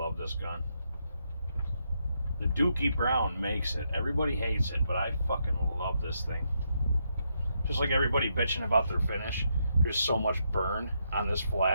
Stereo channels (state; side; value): inverted; both; correlation -0.79